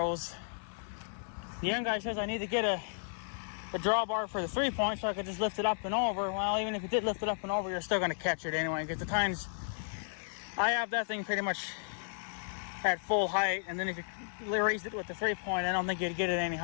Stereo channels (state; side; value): silent; right; 55 dB below the other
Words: The young guy says I need to get a drawbar for the 3-point so I could just lift it up and over. Well, even if you did lift it up and over, you're still going to catch it anyway, because the tines, I have that thing pretty much at full height, and then if you raised it with the 3-point, I don't think you'd get it any